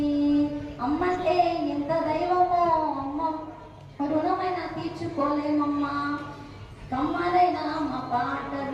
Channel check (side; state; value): both; identical; correlation 1.00